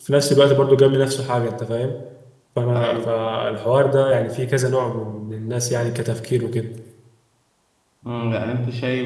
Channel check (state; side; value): identical; both; correlation 1.00